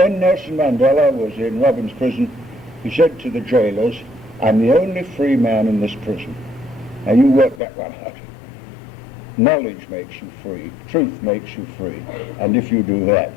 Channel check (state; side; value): drops out; right; at 7.6 s